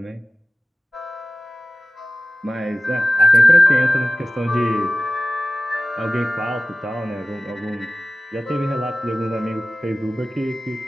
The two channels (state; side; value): normal; both; correlation 0.97